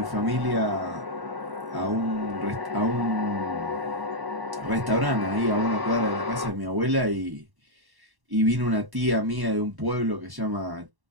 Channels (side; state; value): left; late; 1.1 ms